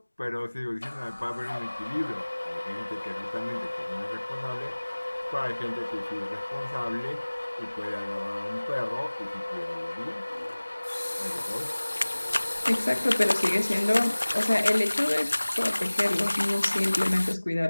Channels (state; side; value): inverted; both; correlation -1.00